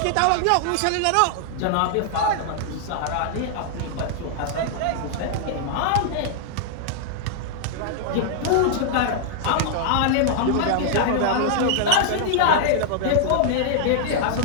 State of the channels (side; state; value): both; different; correlation -0.01